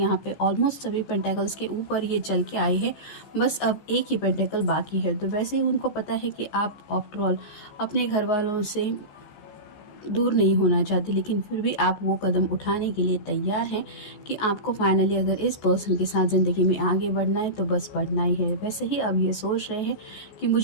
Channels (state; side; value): late; right; 15 ms